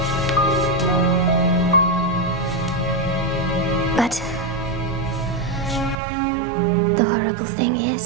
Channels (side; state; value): left; drops out; at 6.0 s